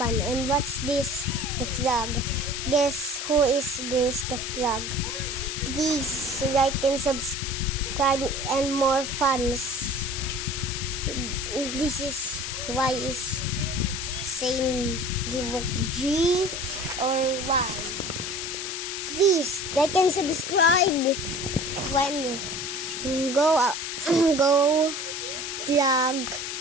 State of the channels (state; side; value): noise; left; hiss, 5 dB below the sound